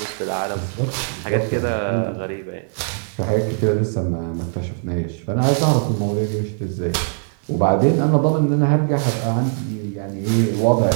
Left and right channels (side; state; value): left; silent; 65 dB below the other